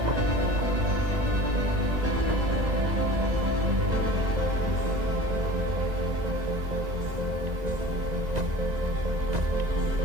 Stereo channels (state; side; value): late; left; 2.0 ms